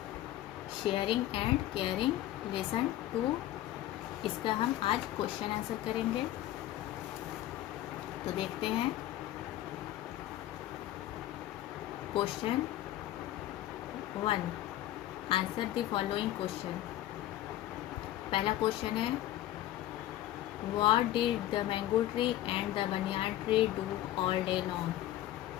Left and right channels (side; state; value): right; quieter; 14.0 dB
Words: शेयरिंग एंड केयरिंग लेसन 2। इसका हम आज क्वेश्चन आंसर करेंगे। तो देखते हैं question 1। Answer the following question. पहला क्वेश्चन है What did the mango tree and the banyan tree do all day long?